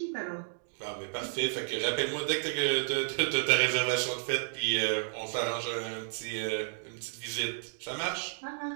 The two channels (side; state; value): left; silent; digital silence